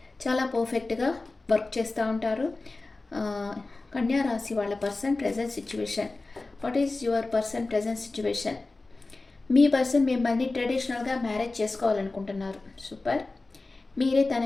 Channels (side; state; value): right; quieter; 3.4 dB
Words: చాలా పర్ఫెక్ట్గా వర్క్ చేస్తూ ఉంటారు. కన్యా రాశి వాళ్ళ person present situation. What is your person present situation? Me person మిమ్మల్ని ట్రెడిషనల్గా మ్యారేజ్ చేసుకోవాలనుకుంటున్నారు. సూపర్. మీరే